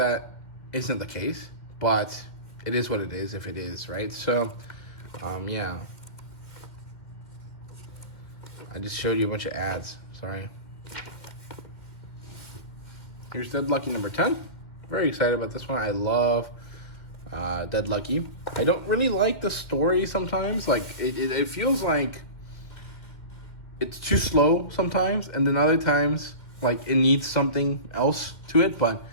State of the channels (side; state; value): right; late; 2.1 ms